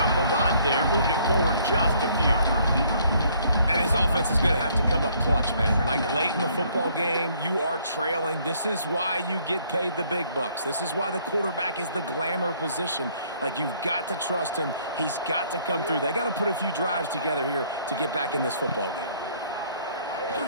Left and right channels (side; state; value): both; inverted; correlation -0.63